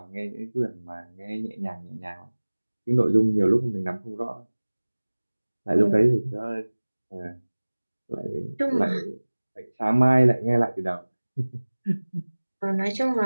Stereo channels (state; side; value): inverted; both; correlation -1.00